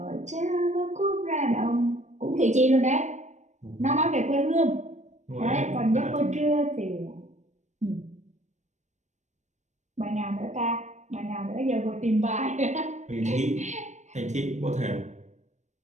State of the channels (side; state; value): left; late; 0.34 ms